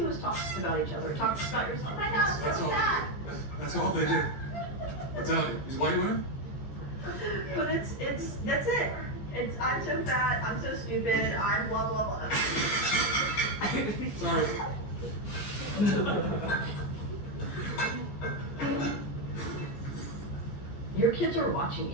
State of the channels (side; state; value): right; late; 14 ms